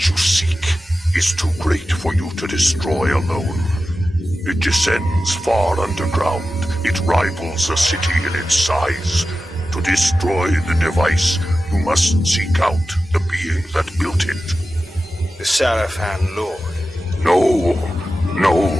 you seek is too great for you to destroy alone. It descends far underground. It rivals a city in its size. To destroy the device, you must seek out the being that built it. The Sarafan Lord. No,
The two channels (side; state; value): both; normal; correlation 0.93